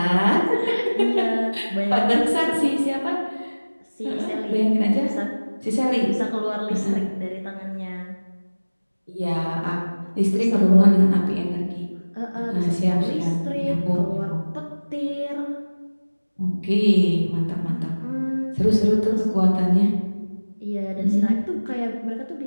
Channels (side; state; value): both; inverted; correlation -1.00